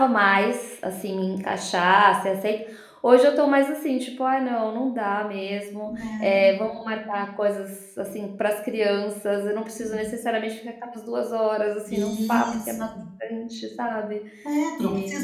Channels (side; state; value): both; identical; correlation 1.00